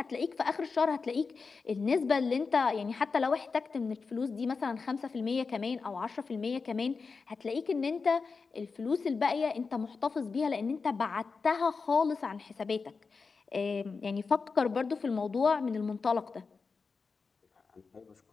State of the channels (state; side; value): quieter; right; 4.7 dB